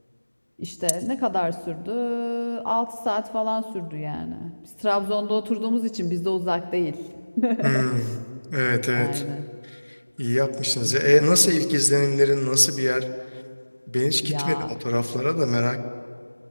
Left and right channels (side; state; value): both; inverted; correlation -1.00